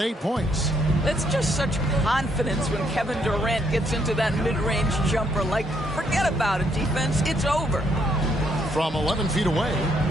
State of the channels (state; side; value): normal; both; correlation 0.72